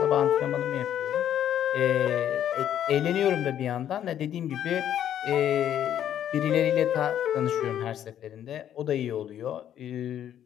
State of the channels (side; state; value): right; quieter; 10.5 dB